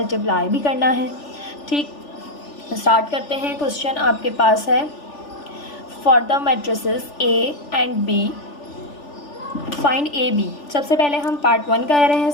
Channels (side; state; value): right; late; 3.4 ms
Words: भी करना है। ठीक, स्टार्ट करते हैं। क्वेश्चन आपके पास है, for the matrices A and B find A B. सबसे पहले हम पार्ट 1 कह रहे हैं